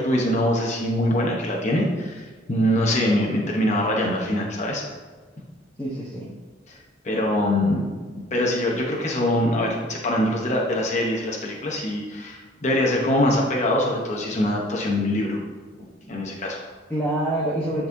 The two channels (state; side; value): normal; both; correlation 0.54